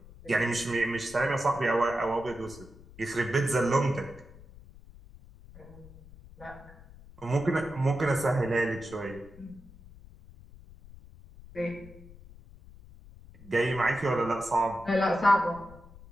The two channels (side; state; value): left; noise; rumble, 20 dB below the sound